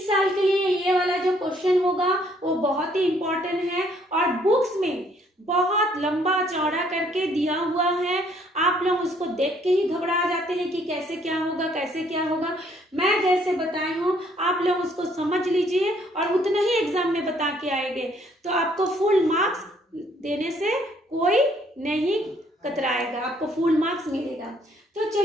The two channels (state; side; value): normal; both; correlation 0.65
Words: साल के लिए ये वाला जो क्वेश्चन होगा वो बहुत ही इम्पोर्टेंट है और बुक्स में बहुत लंबा चौड़ा करके दिया हुआ है। आप लोग उसको देख के ही घबरा जाते हैं कि कैसे क्या होगा, कैसे क्या होगा। मैं जैसे बताई हूँ आप लोग उसको समझ लीजिए और उतना ही एग्जाम में बता के आएंगे, तो आपको फुल मार्क्स देने से कोई नहीं कतराएगा, आपको फुल मार्क्स मिलेगा। तो